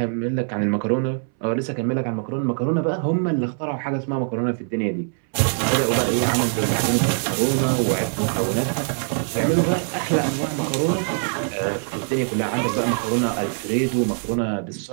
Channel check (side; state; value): left; silent; 64 dB below the other